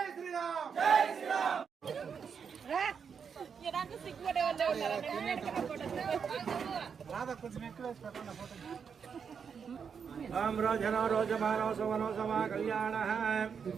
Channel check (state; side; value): quieter; left; 6.6 dB